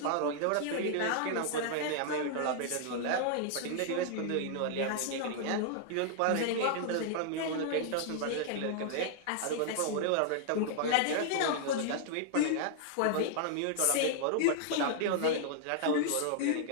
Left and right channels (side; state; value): both; different; correlation -0.01